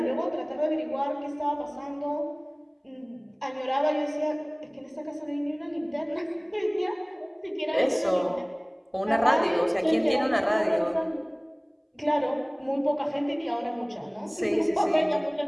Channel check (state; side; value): identical; both; correlation 1.00